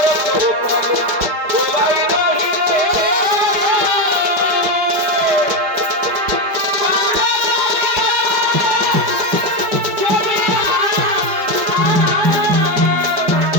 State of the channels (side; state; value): left; late; 4.9 ms